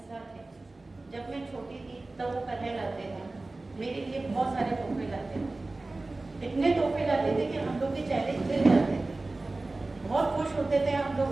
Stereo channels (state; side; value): quieter; left; 3.1 dB